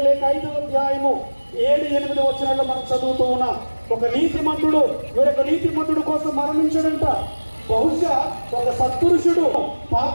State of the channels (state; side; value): inverted; both; correlation -1.00